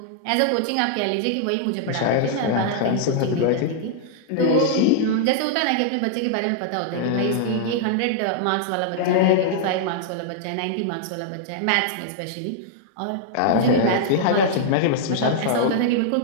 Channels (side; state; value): both; different; correlation -0.01